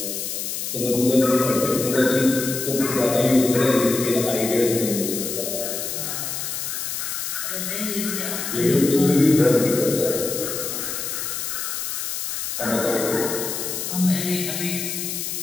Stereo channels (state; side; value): noise; left; hiss, 4 dB below the sound